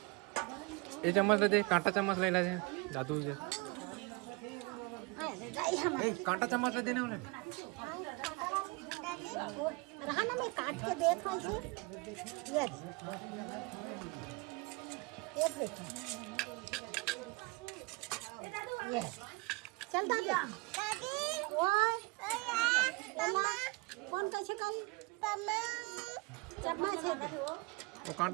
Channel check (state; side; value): quieter; left; 27.3 dB